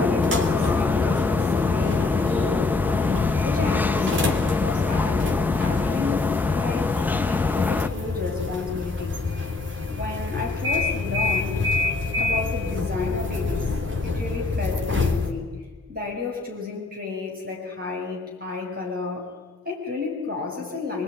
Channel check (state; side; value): quieter; right; 3.5 dB